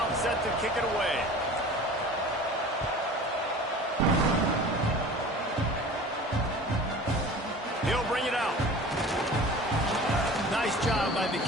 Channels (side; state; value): both; normal; correlation 0.41